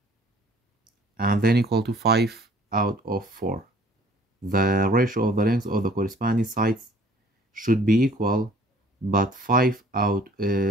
and then equal to 5 out of 4. The ratio of the length of the corresponding sides should be equal, but 5 out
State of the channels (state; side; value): normal; both; correlation 0.55